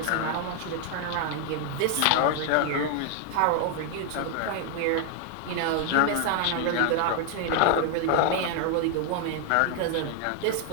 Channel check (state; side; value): different; both; correlation 0.00